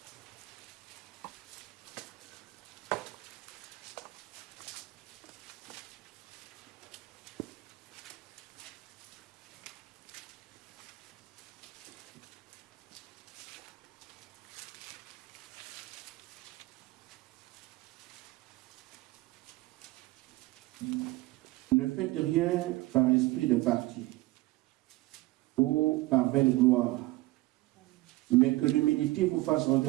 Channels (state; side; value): quieter; left; 19.7 dB